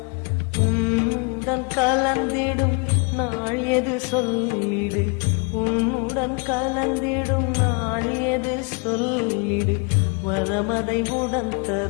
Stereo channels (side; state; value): right; quieter; 35.0 dB